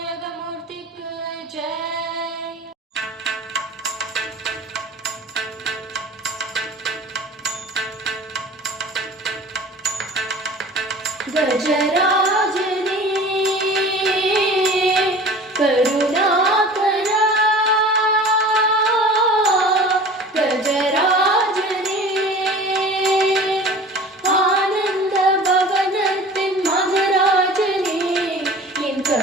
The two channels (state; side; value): normal; both; correlation 0.41